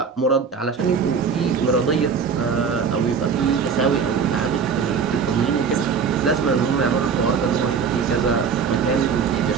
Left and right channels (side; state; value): left; quieter; 6.1 dB